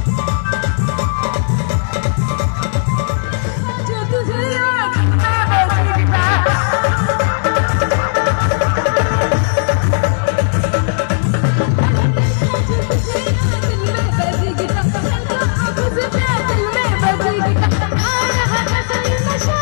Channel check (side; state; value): right; silent; 69 dB below the other